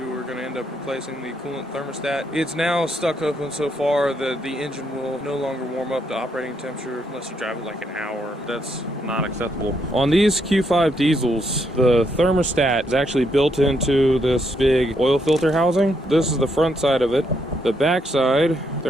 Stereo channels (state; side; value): normal; both; correlation 0.76